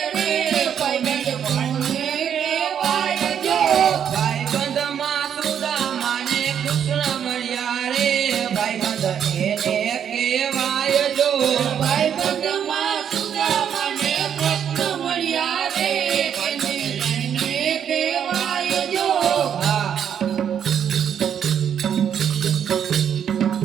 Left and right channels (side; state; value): left; quieter; 8.6 dB